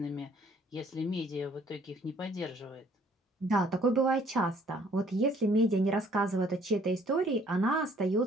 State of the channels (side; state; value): both; normal; correlation 0.60